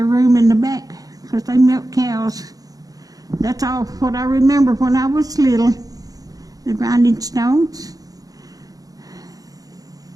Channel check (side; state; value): left; late; 0.18 ms